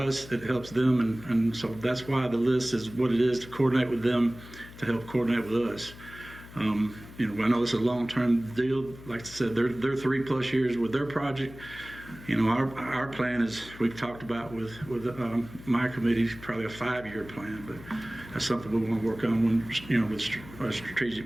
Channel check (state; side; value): noise; left; hum, 17 dB below the sound